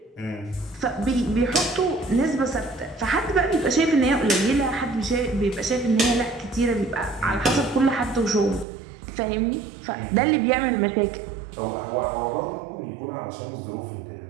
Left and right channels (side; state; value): left; drops out; at 8.7 s